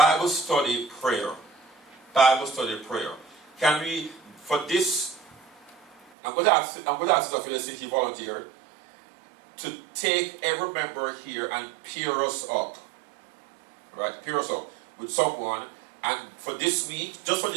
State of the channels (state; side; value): drops out; left; at 6.0 s